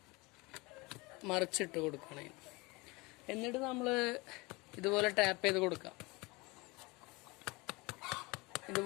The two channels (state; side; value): quieter; right; 24.7 dB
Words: മറിച്ചിട്ട് കൊടുക്കണേ. എന്നിട്ട് നമ്മൾ ഇതുപോലെ ടാപ്പ് ചെയ്ത് കൊടുക്കാം.